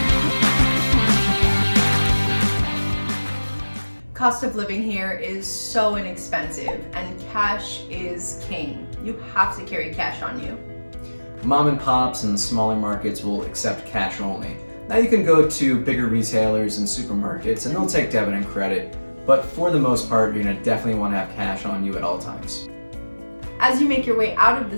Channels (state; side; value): inverted; both; correlation -1.00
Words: Cost of living here is so inexpensive, and cash is king. You have to carry cash on you. Mom and pops and smaller markets will accept cash only. Now you can go to bigger retailers and supermarkets and they'll take debit and credit, but for the most part, you're gonna definitely want to have cash on you at all times. As you make your way out of the